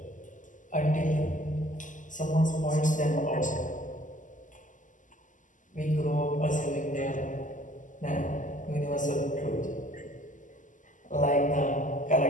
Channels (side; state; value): right; late; 0.37 ms